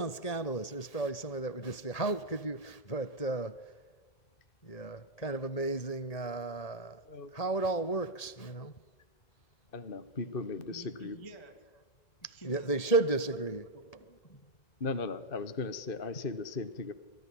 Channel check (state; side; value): late; right; 1.8 ms